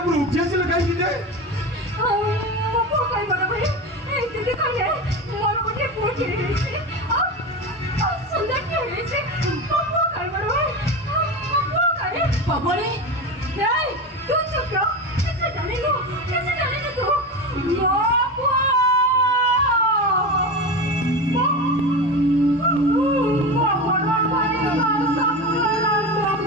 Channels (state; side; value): normal; both; correlation 0.23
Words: উঠিয়েছিল কাইকি যে মো কই বড় ভাই এই দিদি কইলে মোর উঠে পড়ে গেছে সুন্দর কি হয়েছে মো কই বড় ভাই মো কই বাবরে এই তুই চুপ রহ कैसे जाने लो तू बाबू